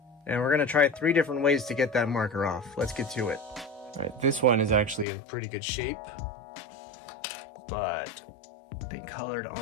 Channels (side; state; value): right; drops out; at 5.1 s